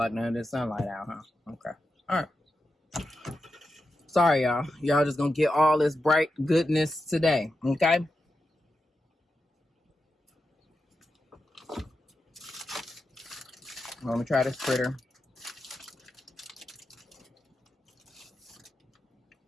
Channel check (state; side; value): normal; both; correlation 0.89